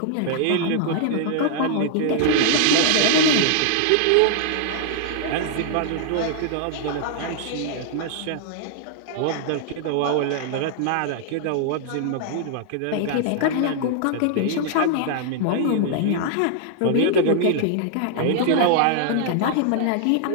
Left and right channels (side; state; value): both; different; correlation -0.01